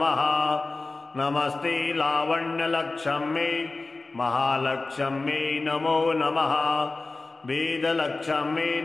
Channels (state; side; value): quieter; right; 3.4 dB